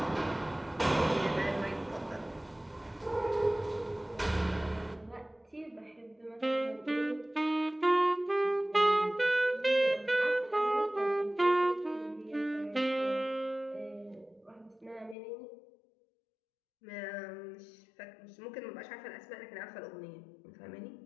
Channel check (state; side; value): drops out; right; at 15.2 s